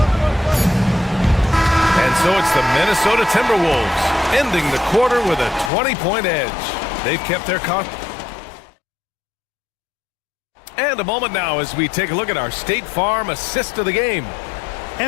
And so it's the Minnesota Timberwolves ending the quarter with a 20-point edge. They've kept their And a moment now as we take a look at our State Farm assist of the game.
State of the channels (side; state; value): right; drops out; at 5.7 s